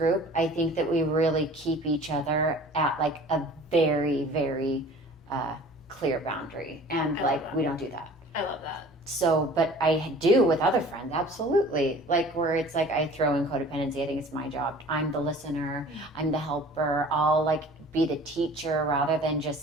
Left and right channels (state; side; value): normal; both; correlation 0.46